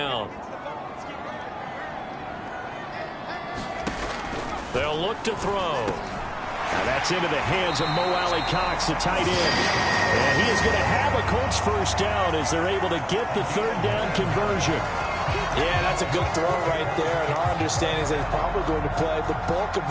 They'll look to throw. Now that's into the hands of Mo Alley Cox, the tight end. And he is going to have a Colts first down as they're able to get the 3rd down conversion. Yeah, that's a good throw right there. And our understanding is that he's probably going to play the bulk of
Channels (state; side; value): identical; both; correlation 1.00